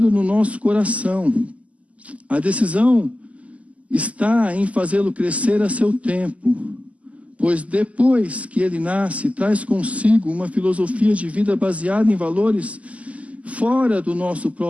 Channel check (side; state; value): left; late; 0.068 ms